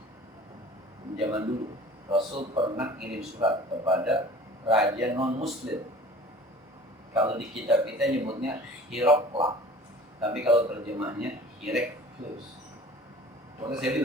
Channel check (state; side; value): normal; both; correlation 0.44